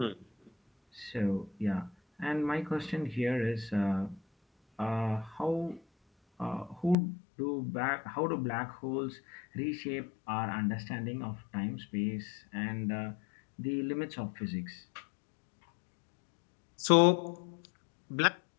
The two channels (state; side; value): drops out; right; at 7.0 s